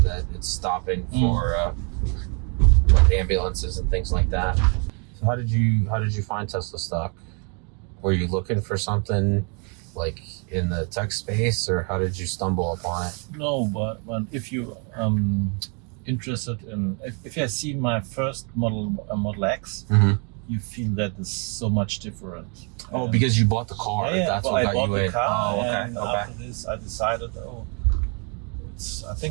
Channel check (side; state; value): left; quieter; 36.6 dB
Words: that it's stopping for like ambulances and things like that. So how did you find Tesla stock? Were you looking for something like in the tech space, or how did you stumble upon it? No, but if you interested in, if you have seen my first Model X, you feel that it's so much different. Oh, because you bought the car. Yeah, That's but what I got bought you the in. car, Oh, okay. and after this, I decided, I